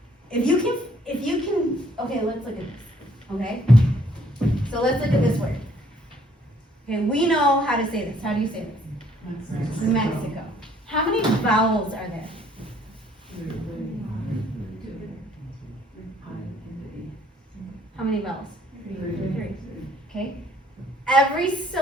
If you can, okay, let's look at this. Okay, so let's look at this word. Okay, we know how to say this. How do you say this? Mexico. How many vowels are there? How many vowels? 3. Okay. Every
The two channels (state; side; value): normal; both; correlation 0.63